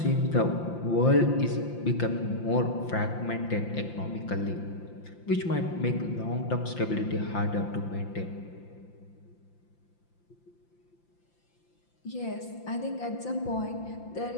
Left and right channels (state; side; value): late; right; 5.8 ms